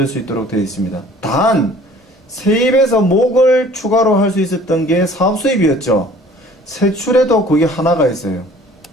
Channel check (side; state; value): both; normal; correlation 0.51